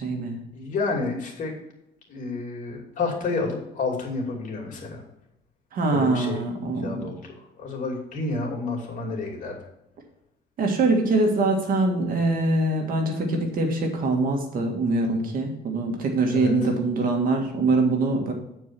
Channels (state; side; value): normal; both; correlation 0.48